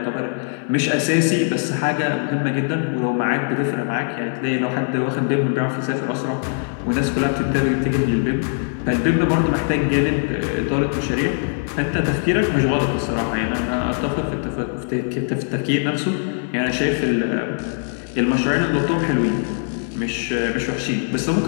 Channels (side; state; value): right; silent; 65 dB below the other